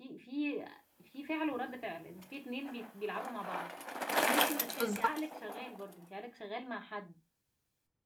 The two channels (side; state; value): both; identical; correlation 1.00